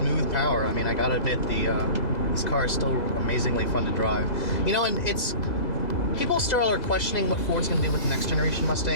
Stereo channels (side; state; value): right; late; 2.0 ms